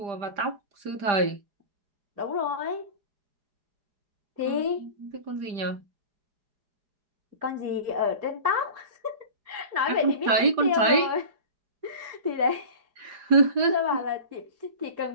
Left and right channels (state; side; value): late; left; 5.0 ms